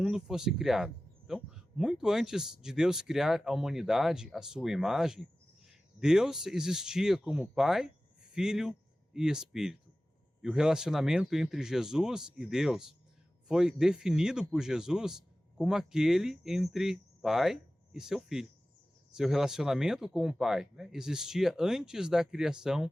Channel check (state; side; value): normal; both; correlation 0.96